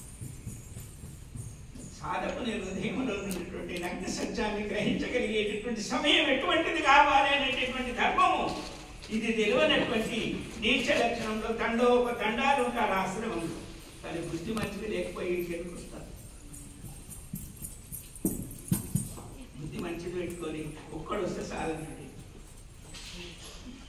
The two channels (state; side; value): identical; both; correlation 1.00